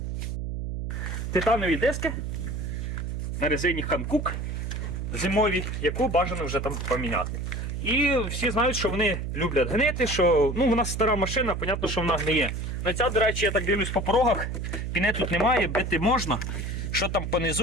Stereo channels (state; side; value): noise; right; hum, 4 dB below the sound